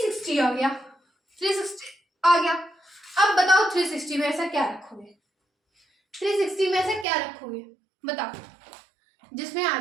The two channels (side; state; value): left; drops out; at 7.1 s